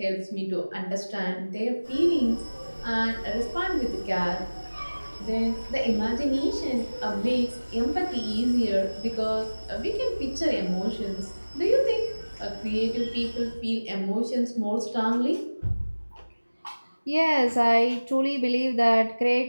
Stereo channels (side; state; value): both; inverted; correlation -1.00